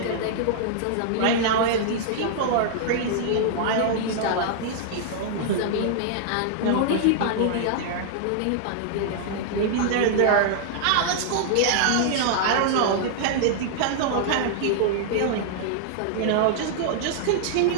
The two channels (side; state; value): both; different; correlation -0.01